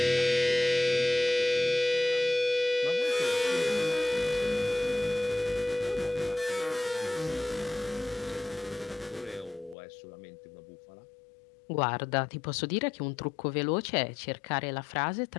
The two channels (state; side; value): drops out; right; at 9.8 s